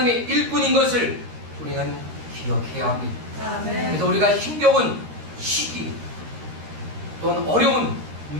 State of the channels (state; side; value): late; left; 13 ms